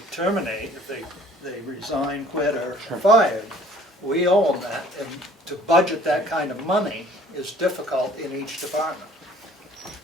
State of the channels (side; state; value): both; normal; correlation 0.53